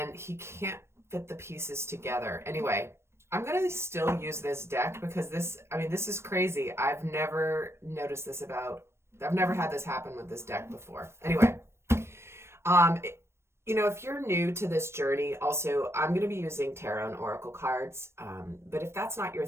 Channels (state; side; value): late; left; 0.13 ms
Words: he can't fit the pieces together. Anyway, I'm going to still use this deck because this is crazy. I've never noticed this I've never had this happen with this deck before. Anyway, if you're new to this journey, also, I'm going to be using tarot and oracle cards. But if that's not your